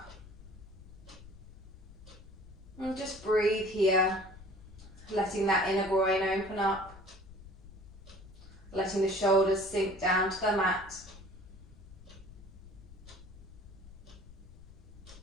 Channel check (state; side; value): noise; left; rumble, 18 dB below the sound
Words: And just breathe here, letting that inner groin open up, letting the shoulders sink down to the mat.